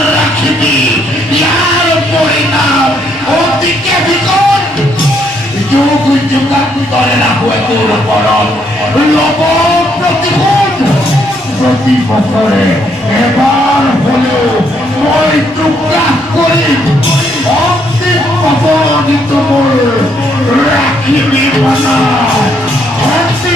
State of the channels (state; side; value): normal; both; correlation 0.72